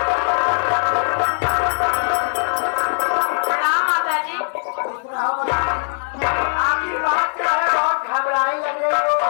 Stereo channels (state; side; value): silent; right; 56 dB below the other